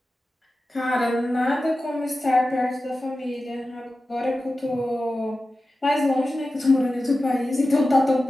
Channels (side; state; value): both; normal; correlation 0.94